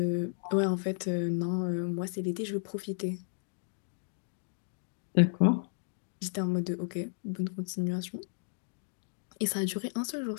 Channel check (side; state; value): right; silent; digital silence